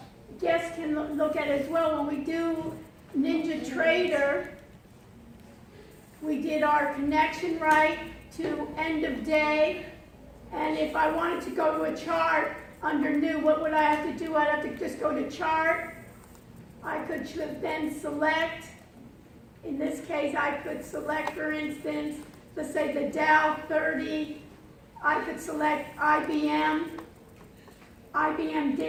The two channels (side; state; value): both; identical; correlation 1.00